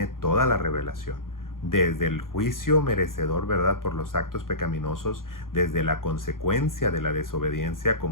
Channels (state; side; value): late; right; 0.91 ms